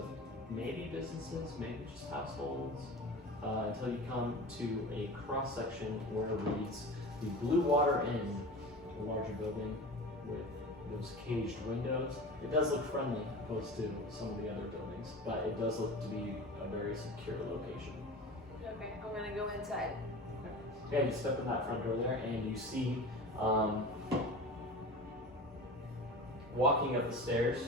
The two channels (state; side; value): normal; both; correlation 0.33